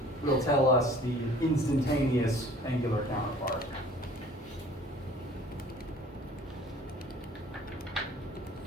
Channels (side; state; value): both; normal; correlation 0.50